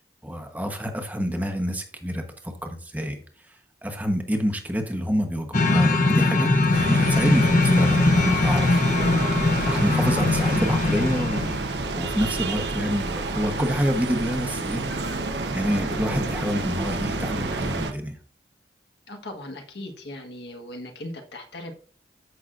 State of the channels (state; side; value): normal; both; correlation 0.75